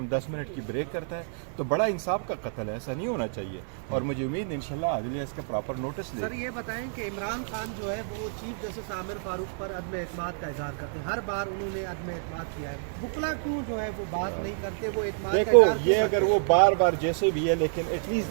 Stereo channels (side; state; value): left; silent; digital silence